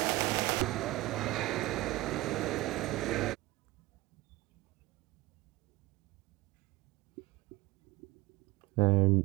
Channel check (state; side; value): quieter; left; 18.9 dB